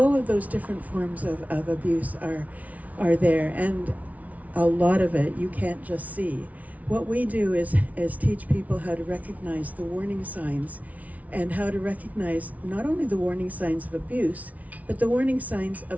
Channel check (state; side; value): late; left; 0.070 ms